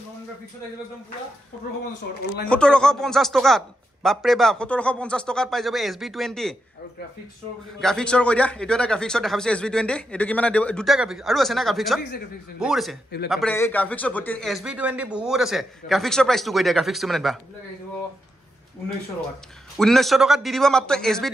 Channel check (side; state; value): both; normal; correlation 0.85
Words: গ্ৰাফিক্সত একদম পুৰা 1750 অনলাইন 1750 টকাত বাপৰে বাপ 1750 টকাত পাই যাব SB20 আৰু গ্ৰাফিক্সৰ কৈ দিয়া এইটো এটা গ্ৰাফিক্সৰ দেখাইছে SB20 এইটো কিমান দুটা গ্ৰাফিক্স আৰু আছে না গ্ৰাফিক্সত বহুত আছে বাপৰে এই গ্ৰাফিক্সত ভৰ্তি SB20 বহুত আছে গ্ৰাফিক্সৰ প্ৰাইসটো কৈ দিয়া গ্ৰাফিক্সটো মানে বা 1900 টকাত দি দিব মাত্ৰ